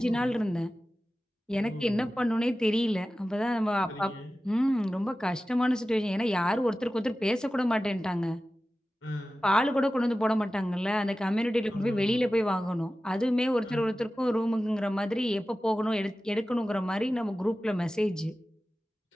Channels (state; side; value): normal; both; correlation 0.95